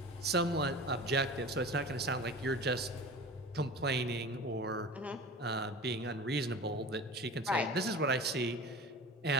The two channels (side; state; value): both; normal; correlation 0.36